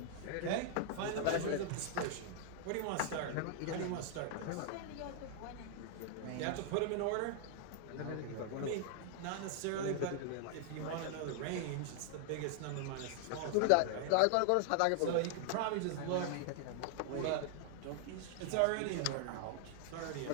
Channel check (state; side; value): different; both; correlation 0.00